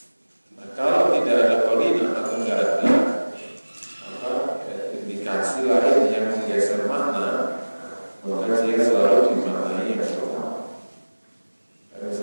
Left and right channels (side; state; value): both; inverted; correlation -1.00